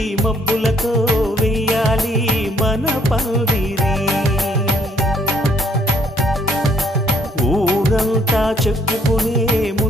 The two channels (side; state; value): both; normal; correlation 0.66